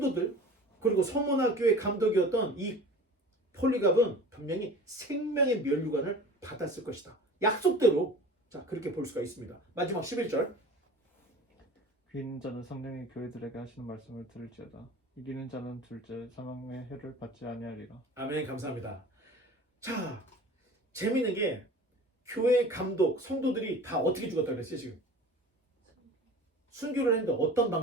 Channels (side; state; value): both; normal; correlation 0.40